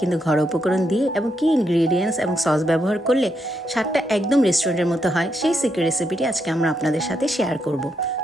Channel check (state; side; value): normal; both; correlation 0.80